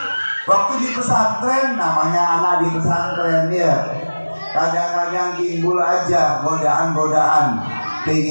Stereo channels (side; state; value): both; inverted; correlation -1.00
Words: Waktu di pesantren, namanya anak di pesantren ya, kadang-kadang timbul aja godaan-godaan,